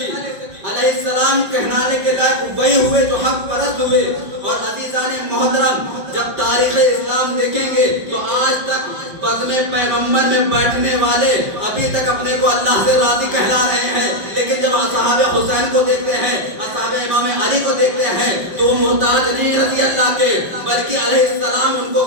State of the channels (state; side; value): late; left; 5.1 ms